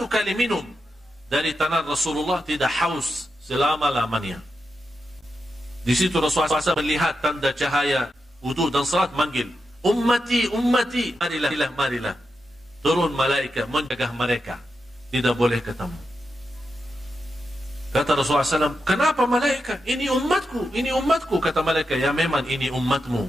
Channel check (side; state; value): both; normal; correlation 0.87